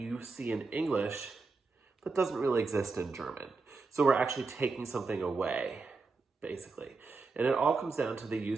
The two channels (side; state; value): left; quieter; 4.1 dB